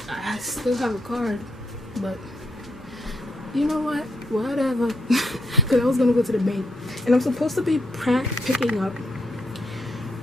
I still have a card. But you know what? Whatever. Because I was gonna go to the bank, and I'm supposed to be picking up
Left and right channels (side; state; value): both; normal; correlation 0.76